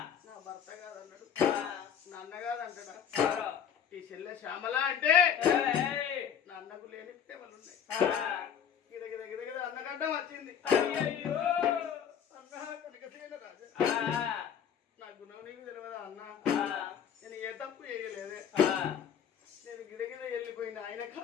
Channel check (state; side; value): quieter; right; 8.2 dB